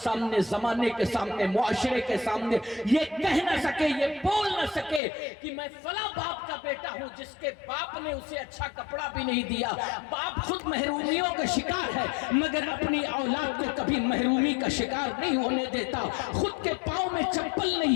سامنے، زمانے کے سامنے، معاشرے کے سامنے یہ کہہ نہ سکے، یہ بول نہ سکے کہ میں فلاں باپ کا بیٹا ہوں جس کے باپ نے اسے اچھا کپڑا بھی نہیں دیا۔ باپ خود محرومیوں کا شکار ہے مگر اپنی اولاد کو کبھی محرومی کا شکار نہیں ہونے دیتا، خود کے پاؤں میں چپل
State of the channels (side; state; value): right; drops out; at 5.0 s